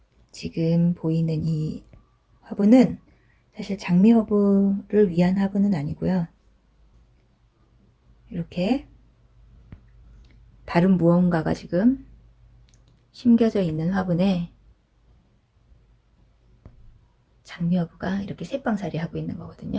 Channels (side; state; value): both; identical; correlation 1.00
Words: 지금 보이는 이 화분은 사실 장미허브를 위한 화분은 아니고요. 이렇게 다른 무언가가 지금 심겨져 있는 화분에 장미허브가 이렇게 새빵살이 하고 있는